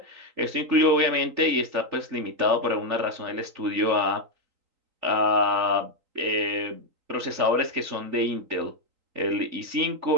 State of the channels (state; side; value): late; left; 3.8 ms